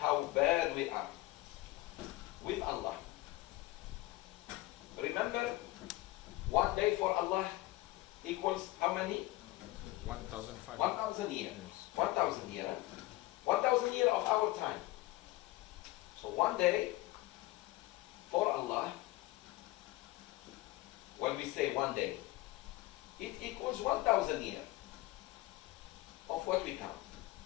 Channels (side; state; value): right; quieter; 19.0 dB